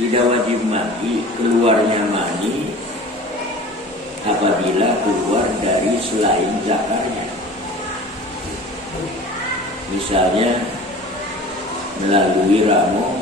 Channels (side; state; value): both; normal; correlation 0.41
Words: tidak wajib mandi keluarnya mani apabila keluar dari selain zakarnya. Misalnya melalui ramu,